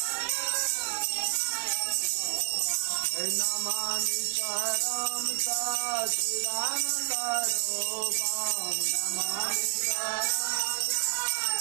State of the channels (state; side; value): quieter; left; 33.1 dB